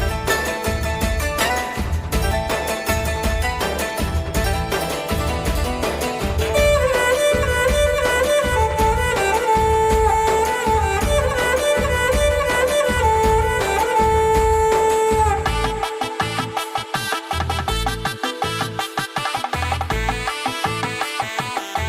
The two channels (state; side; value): identical; both; correlation 1.00